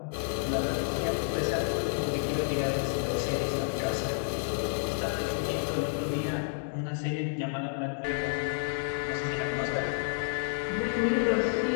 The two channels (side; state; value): right; silent; digital silence